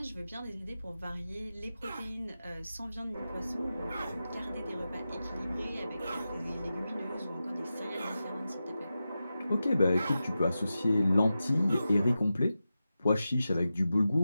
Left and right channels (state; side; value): inverted; both; correlation -0.92